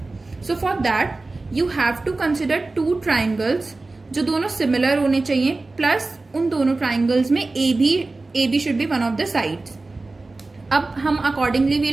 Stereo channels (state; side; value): quieter; left; 3.3 dB